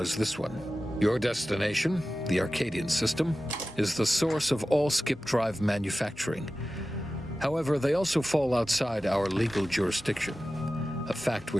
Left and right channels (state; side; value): normal; both; correlation 0.95